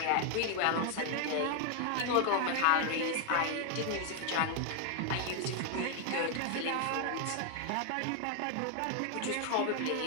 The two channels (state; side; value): different; both; correlation 0.00